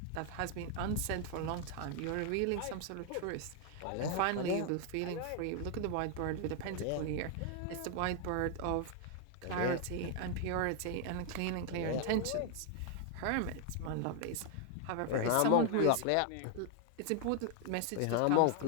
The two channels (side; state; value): both; different; correlation 0.00